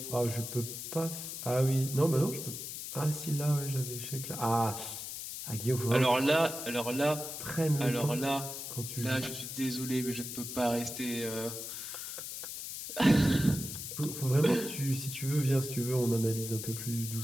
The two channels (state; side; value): noise; left; hiss, 7 dB below the sound